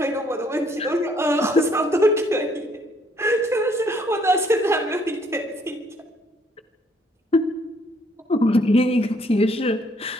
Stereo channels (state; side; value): normal; both; correlation 0.66